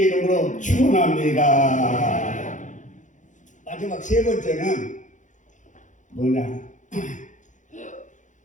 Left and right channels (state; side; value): late; right; 0.36 ms